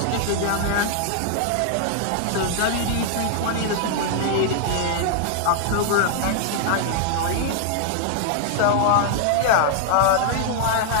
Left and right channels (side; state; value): both; different; correlation 0.00